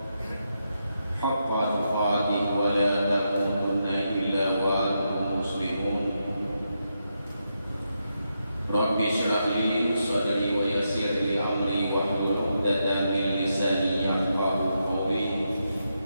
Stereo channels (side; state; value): both; inverted; correlation -0.84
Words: haqqa tuqatih wa la tamutunna illa wa antum muslimun. Rabbi shrah li sadri wa yassir li amri wahlul 'uqdatam min lisani yafqahu qawli.